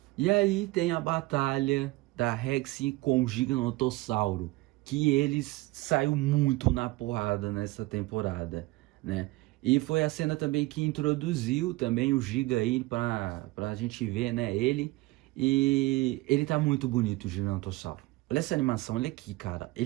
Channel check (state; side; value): quieter; left; 20.7 dB